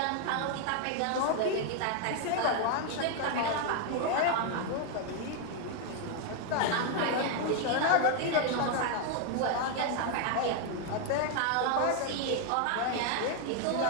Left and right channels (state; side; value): different; both; correlation 0.00